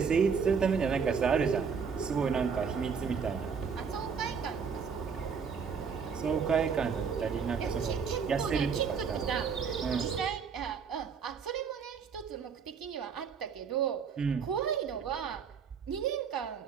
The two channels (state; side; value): quieter; left; 6.2 dB